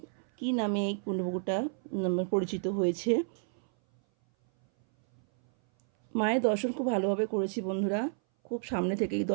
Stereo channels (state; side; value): silent; left; 57 dB below the other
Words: কি নামে এই কুণ্ডপুকুরটা পরিচিত হয়েছে। মায়ের দর্শন খুব ভালোভাবে করেছি বন্ধুরা, খুব সামনে থেকেই